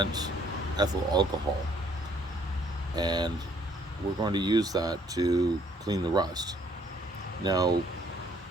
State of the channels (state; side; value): normal; both; correlation 0.63